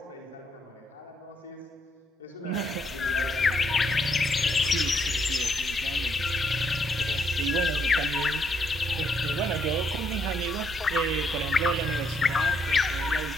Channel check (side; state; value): both; normal; correlation 0.73